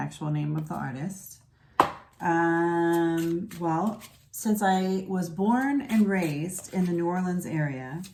name of the artist. Well, since I was born and raised in the New Orleans area,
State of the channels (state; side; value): identical; both; correlation 1.00